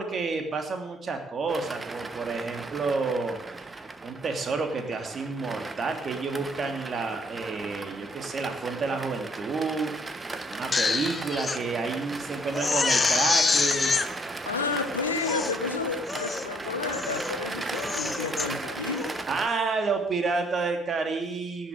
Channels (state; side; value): normal; both; correlation 0.65